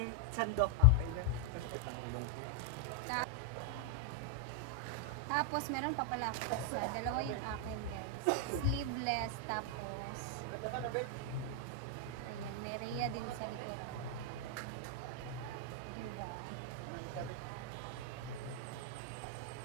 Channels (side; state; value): both; different; correlation 0.00